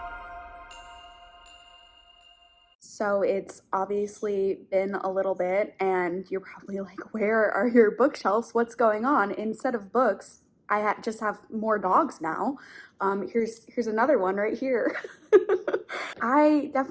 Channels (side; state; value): both; identical; correlation 1.00